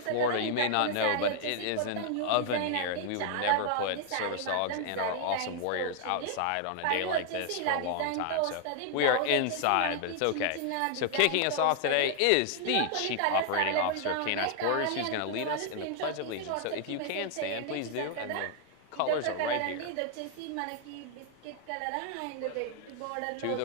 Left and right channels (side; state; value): both; different; correlation 0.00